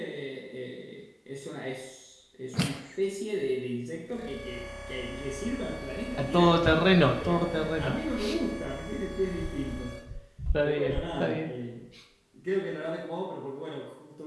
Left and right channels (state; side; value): identical; both; correlation 1.00